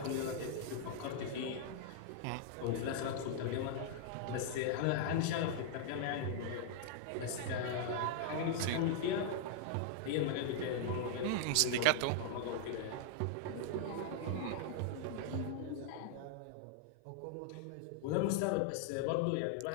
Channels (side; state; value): both; different; correlation -0.01